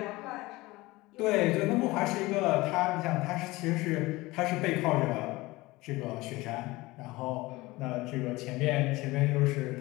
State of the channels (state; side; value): quieter; right; 20.6 dB